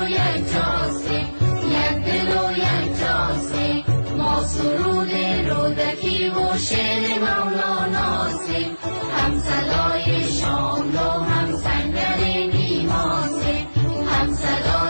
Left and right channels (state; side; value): inverted; both; correlation -1.00